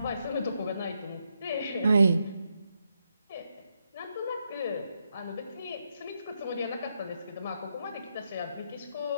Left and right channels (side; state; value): both; inverted; correlation -0.81